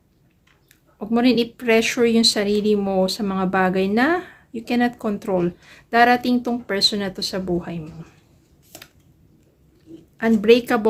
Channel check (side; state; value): both; identical; correlation 1.00